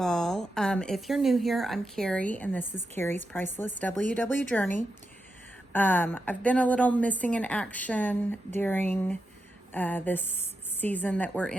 all. If you're new here, I'm Carrie, and this is Carrie's Priceless WW Journey. I've been a little missing in action during this season that we're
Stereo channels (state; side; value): normal; both; correlation 0.87